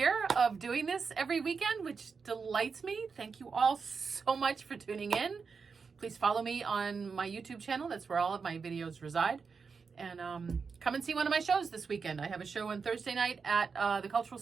of doing this every weekend, which delights me. Thank you all so much for tuning in. Please follow me on my YouTube channel. That's where all of my videos reside. And come and see one of my shows this weekend. I have a show on Thursday night at the Cultural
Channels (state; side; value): quieter; left; 5.3 dB